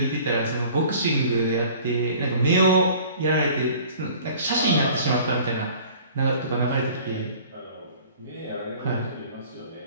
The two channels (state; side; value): inverted; both; correlation -0.48